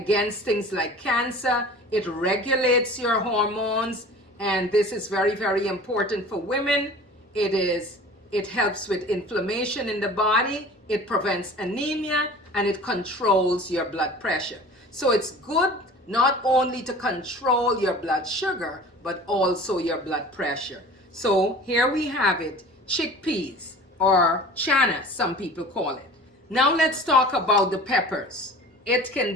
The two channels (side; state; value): both; normal; correlation 0.42